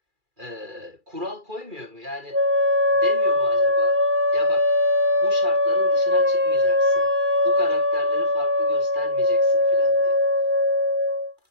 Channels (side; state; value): left; late; 2.4 ms